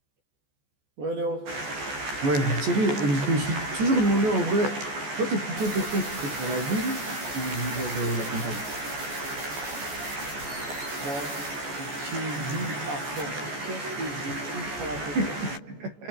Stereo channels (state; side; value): late; left; 14 ms